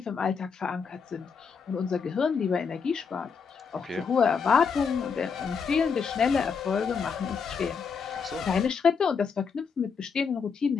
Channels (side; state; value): right; quieter; 5.9 dB